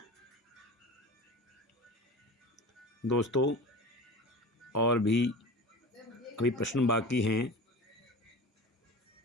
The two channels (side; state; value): both; normal; correlation 0.34